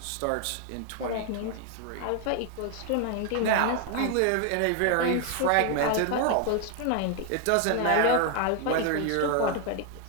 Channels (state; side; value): different; both; correlation 0.01